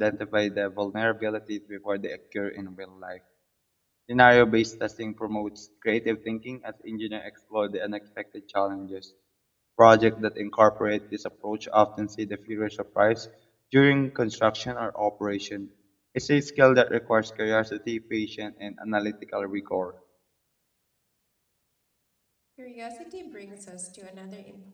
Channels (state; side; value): identical; both; correlation 1.00